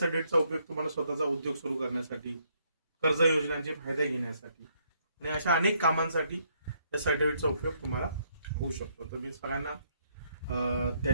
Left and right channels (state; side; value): inverted; both; correlation -0.72